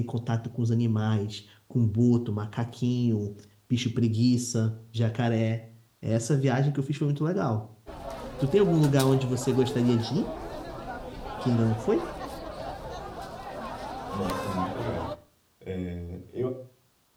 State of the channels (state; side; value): identical; both; correlation 1.00